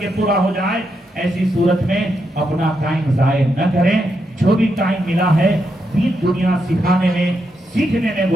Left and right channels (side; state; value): both; normal; correlation 0.82